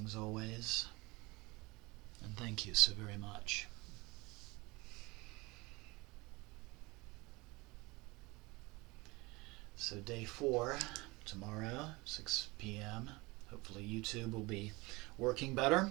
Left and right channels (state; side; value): quieter; left; 24.1 dB